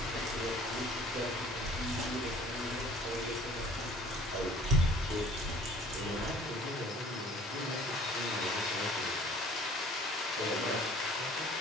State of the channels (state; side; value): normal; both; correlation 0.51